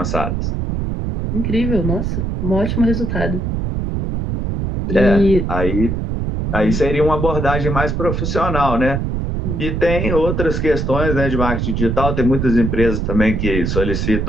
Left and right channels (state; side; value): noise; right; rumble, 1 dB below the sound